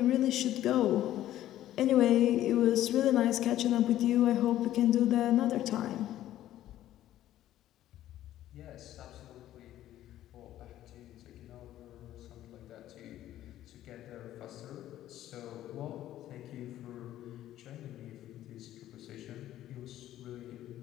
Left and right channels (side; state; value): right; quieter; 13.1 dB